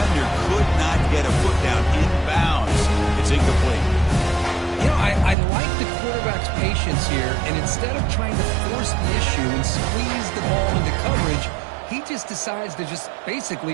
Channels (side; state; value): left; drops out; at 5.4 s